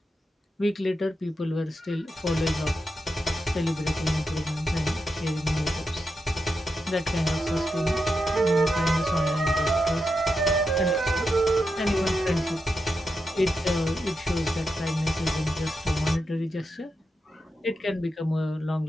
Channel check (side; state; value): both; normal; correlation 0.87